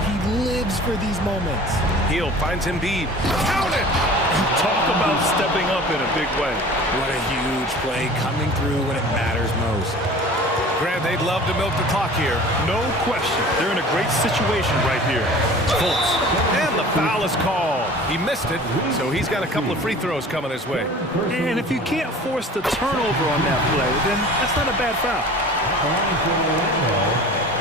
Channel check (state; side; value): normal; both; correlation 0.43